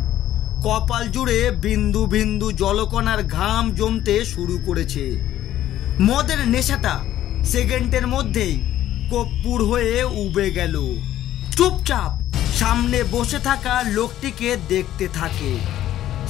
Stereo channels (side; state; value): right; quieter; 12.8 dB